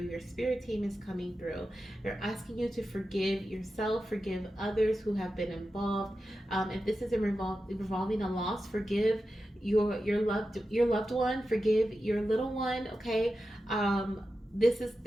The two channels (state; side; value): normal; both; correlation 0.91